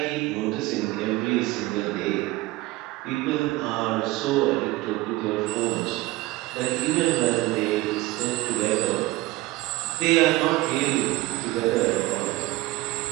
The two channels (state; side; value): quieter; left; 19.5 dB